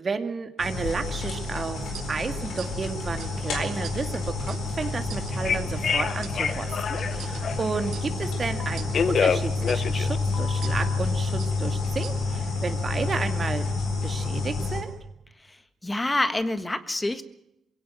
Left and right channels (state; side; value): normal; both; correlation 0.81